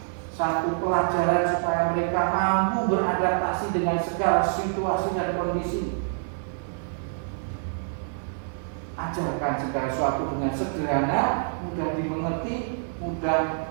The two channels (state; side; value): silent; left; 61 dB below the other